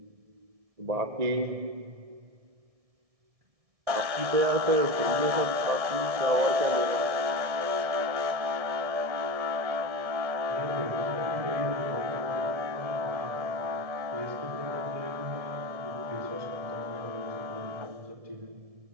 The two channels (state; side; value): late; left; 1.6 ms